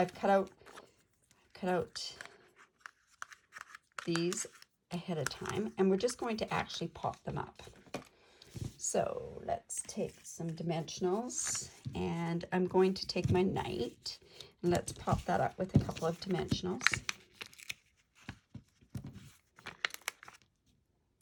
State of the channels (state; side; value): identical; both; correlation 1.00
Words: cut out these ahead of time, and we're just going to actually pop them up. So let's take some dimensionals, and I'm going to take my knight, and let's pop that up with a couple of dimensionals.